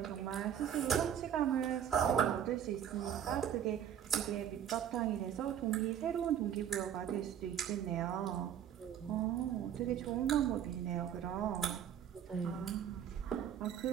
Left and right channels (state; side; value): quieter; left; 9.5 dB